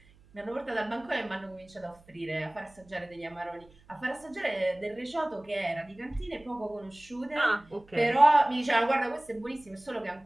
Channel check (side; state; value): right; noise; hum, 28 dB below the sound